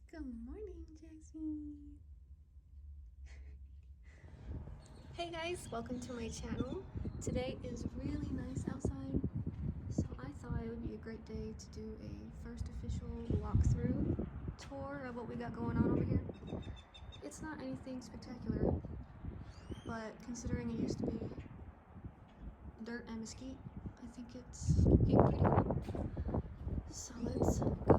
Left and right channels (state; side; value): identical; both; correlation 1.00